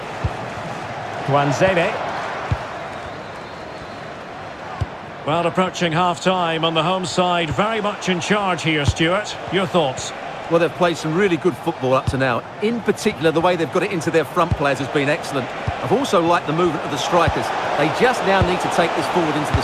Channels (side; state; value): both; identical; correlation 1.00